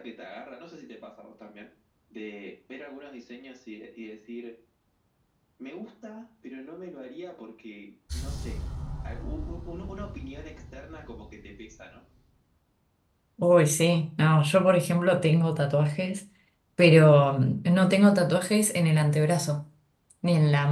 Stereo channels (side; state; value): both; identical; correlation 1.00